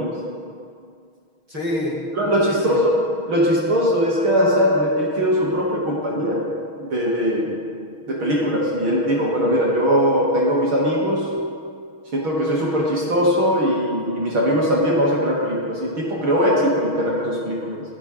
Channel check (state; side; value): late; left; 6.3 ms